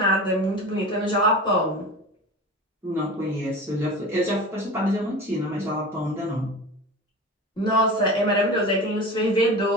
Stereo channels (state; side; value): normal; both; correlation 0.32